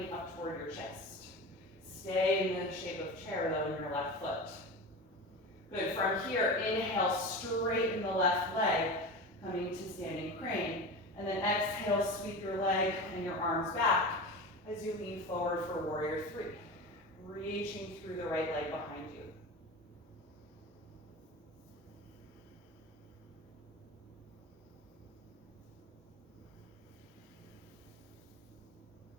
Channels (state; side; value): normal; both; correlation 0.28